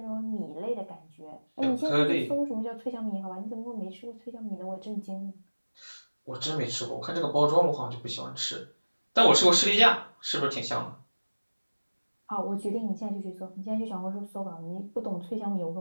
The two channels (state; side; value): inverted; both; correlation -1.00